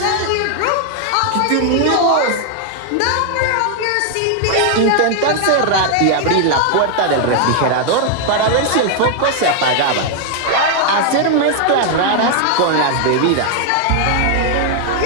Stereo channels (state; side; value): different; both; correlation 0.00